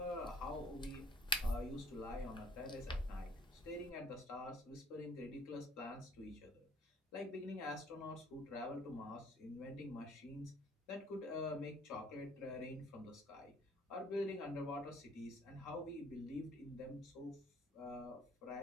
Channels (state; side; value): normal; both; correlation 0.57